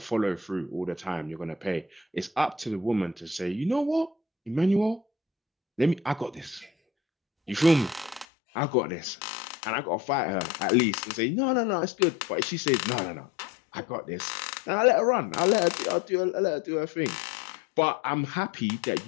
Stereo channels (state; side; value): drops out; right; at 8.2 s